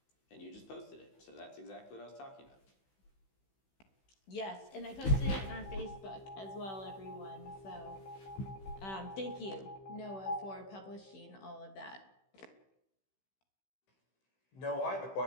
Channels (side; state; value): right; late; 16 ms